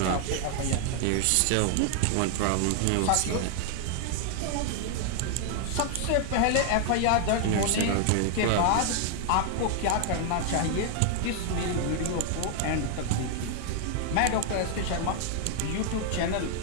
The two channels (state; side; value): different; both; correlation 0.00